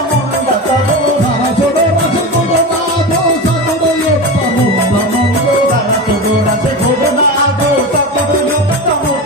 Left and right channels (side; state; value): both; normal; correlation 0.24